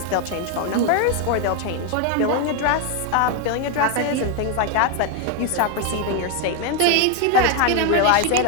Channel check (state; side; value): different; both; correlation 0.01